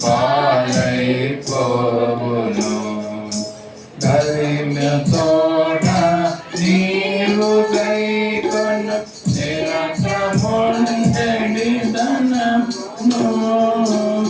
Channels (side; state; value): both; identical; correlation 1.00